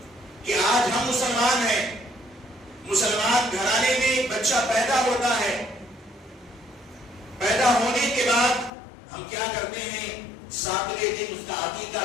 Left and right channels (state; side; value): drops out; right; at 8.7 s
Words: کہ آج ہم مسلمان ہیں، مسلمان گھرانے میں ایک بچہ پیدا ہوتا ہے، پیدا ہونے کے بعد ہم کیا کرتے ہیں، ساتویں دن اس کا عقیقہ